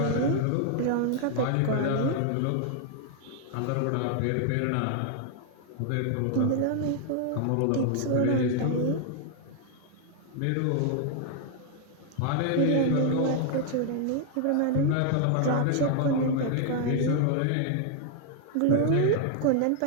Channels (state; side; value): different; both; correlation 0.00